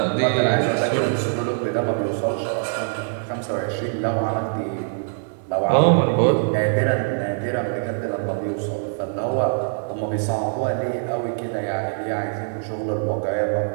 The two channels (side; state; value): left; silent; digital silence